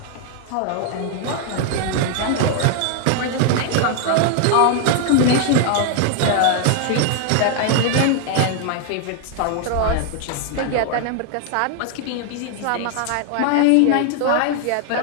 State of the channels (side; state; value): both; different; correlation 0.00